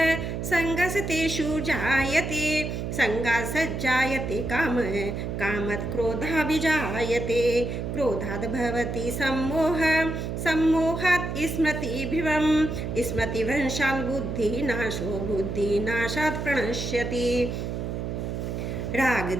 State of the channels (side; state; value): right; noise; hum, 4 dB below the sound